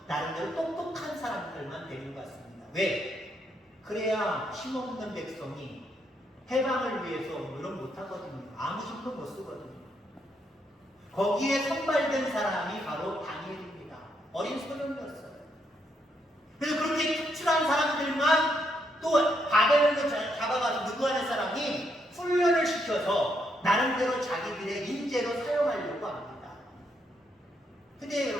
나름대로 똑똑한 사람들만 데리고 갔습니다. 왜? 그래야 힘없는 백성이 해방을 위해서 노력 못하거든요. 아무 힘도 못 쓰거든요. 거기에 선발된 사람이 바로 다니엘입니다. 어린 소년이었어요. 그래서 그렇게 특출한 사람들만 또 바벨론으로 잡아가서 누구하는 사람이 훈련을 시켜서 나름대로 자기들의 인재로 사용하려고 합니다. 근데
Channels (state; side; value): normal; both; correlation 0.76